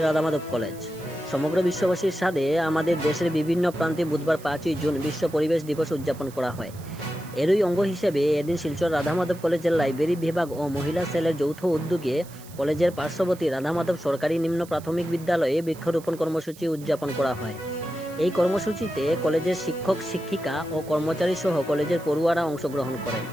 কলেজ। সমগ্র বিশ্ববাসীর সাথে আমাদের দেশের বিভিন্ন প্রান্তে বুধবার 5ই জুন বিশ্ব পরিবেশ দিবস উদযাপন করা হয়। এরই অঙ্গ হিসেবে এদিন শিলচর রাধামাধব কলেজের লাইব্রেরি বিভাগ ও মহিলা সেলের যৌথ উদ্যোগে কলেজের পার্শ্ববর্তী রাধামাধব সরকারি নিম্ন প্রাথমিক বিদ্যালয়ে বৃক্ষরোপণ কর্মসূচি উদযাপন করা হয়। এই কর্মসূচিতে কলেজের শিক্ষক শিক্ষিকা ও কর্মচারী সহ কলেজের পড়ুয়ারা অংশগ্রহণ করেন।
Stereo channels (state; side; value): noise; right; hiss, 21 dB below the sound